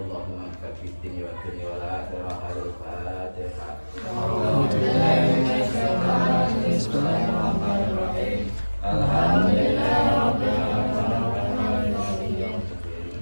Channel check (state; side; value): inverted; both; correlation -1.00